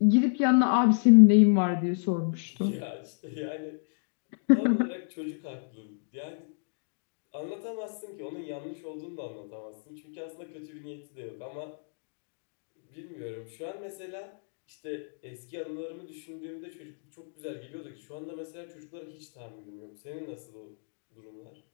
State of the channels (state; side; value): silent; right; digital silence